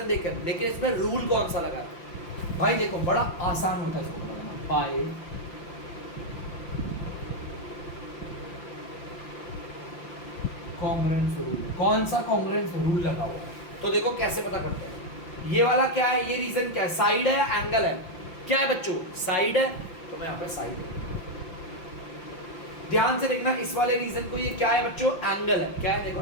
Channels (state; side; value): late; right; 5.8 ms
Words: देकर, लेकिन इसमें रूल कौन सा लगा भाई, देखो बड़ा आसान होता है इसको लगाना, बाय कॉन्ग्रुएंस रूल। कौन सा कॉन्ग्रुएंस रूल लगा हुआ है, तो देखो कैसे पता करते हैं। ये वाला क्या है, ये रीजन क्या है, साइड है या एंगल है, क्या है बच्चों, साइड है, तो मैं यहाँ पे साइड है। ध्यान से देखना, इस वाले रीजन को ये क्या है बच्चों, एंगल है, क्या है, देखो